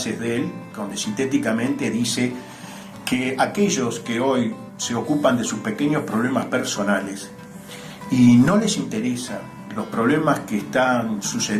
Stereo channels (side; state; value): both; identical; correlation 1.00